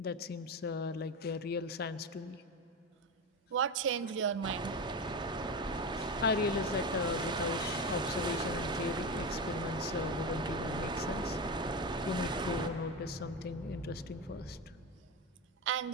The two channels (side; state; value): both; normal; correlation 0.19